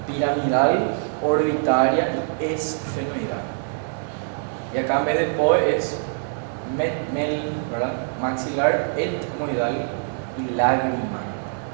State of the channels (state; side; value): silent; left; digital silence